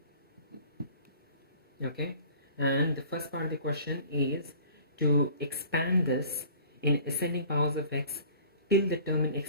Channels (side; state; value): both; inverted; correlation -0.47